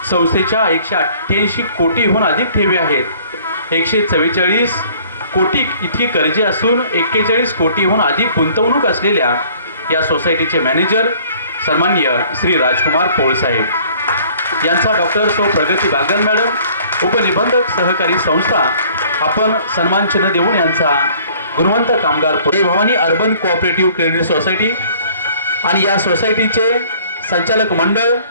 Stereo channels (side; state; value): both; inverted; correlation -0.55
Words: संस्थेच्या 188 कोटीहून अधिक ठेवी आहेत. 144 कोटी इतकी कर्जे असून 41 कोटीहून अधिक गुंतवणूक असलेल्या या सोसायटीचे मॅनेजर सन्माननीय श्री राजकुमार पोळसाहेब यांचा डॉक्टर सौ प्रगती बागल मॅडम, उपनिबंधक सहकारी संस्था, आपण सन्मान चिन्ह देऊन यांचा गुणवंत कामगार Bhavani urban cooperative credit society आणि या सोसायटीचे संचालक मंडळ